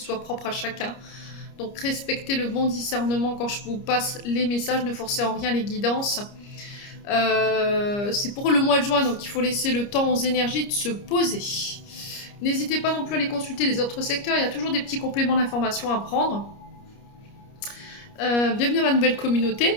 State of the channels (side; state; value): right; late; 29 ms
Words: propre à chacun. Donc respectez le bon discernement quand je vous passe les messages, ne forcez en rien les guidances. C'est pour le mois de juin, donc il faut laisser le temps aux énergies de se poser. N'hésitez pas non plus à aller consulter les autres secteurs, il y a toujours des petits compléments d'informations à prendre. Bienvenue à ma nouvelle